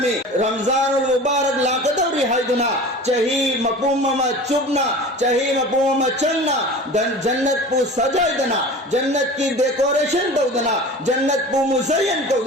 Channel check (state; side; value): normal; both; correlation 0.37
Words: रमजानुल मुबारक लाकदौरी हाइदुना चही मपूमा चुबना चही मपूमा चलना जन्नत पु सजाइदना जन्नत की डेकोरेशन दौदना जन्नत पु मुज़य्यन